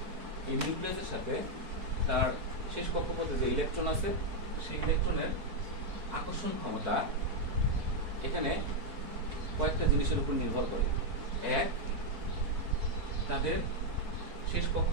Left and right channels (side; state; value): left; late; 4.6 ms